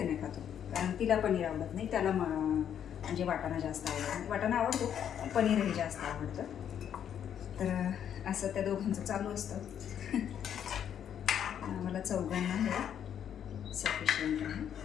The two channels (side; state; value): right; quieter; 9.2 dB